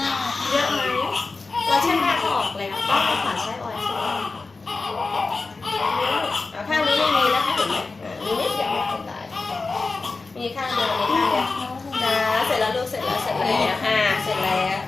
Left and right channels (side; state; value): right; quieter; 3.9 dB